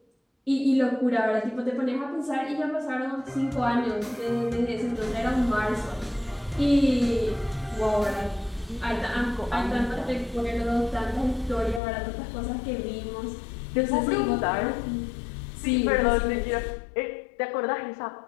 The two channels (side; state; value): right; drops out; at 11.8 s